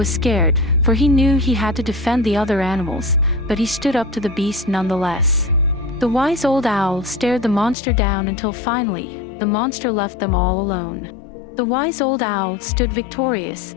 scared, for he knew he had to defend the other animals, but he stood up to the beast nonetheless. The wise old owl stared the monster down until finally, the monster left them all alone. The wise old owl stood victorious,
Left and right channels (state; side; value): drops out; right; at 7.8 s